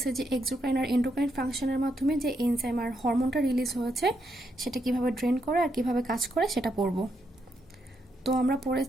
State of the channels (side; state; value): both; normal; correlation 0.79